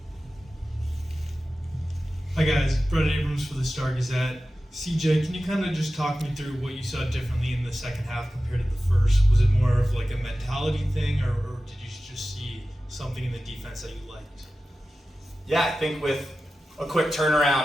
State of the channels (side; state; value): both; normal; correlation 0.94